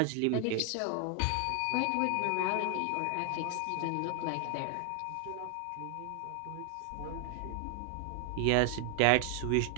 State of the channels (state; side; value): different; both; correlation 0.00